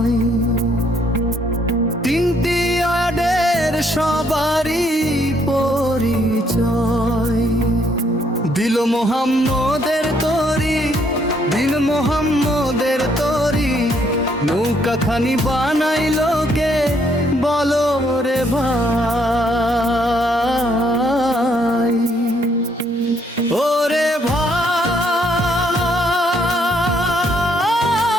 তিনটি আডের সবারই পরিচয় দিল মোহাম্মদের তরি দিল মোহাম্মদের তরি নৌকাখানি বানাইলো কে বলো রে ভাই ওরে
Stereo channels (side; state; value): both; normal; correlation 0.70